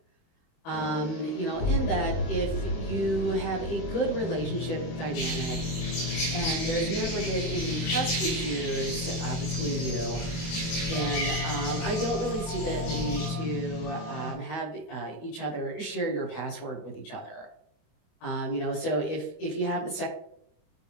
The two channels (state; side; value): late; right; 27 ms